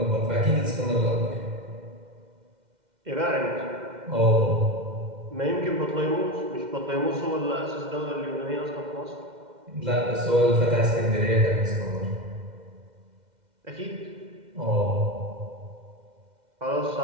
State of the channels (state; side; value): late; left; 2.1 ms